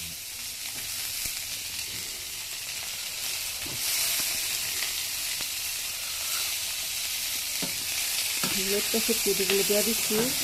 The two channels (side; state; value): both; identical; correlation 1.00